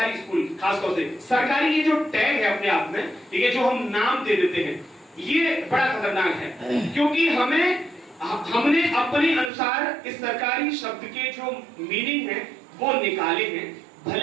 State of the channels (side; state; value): left; drops out; at 9.5 s